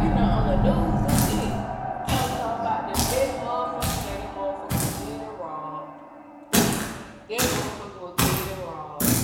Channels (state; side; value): identical; both; correlation 1.00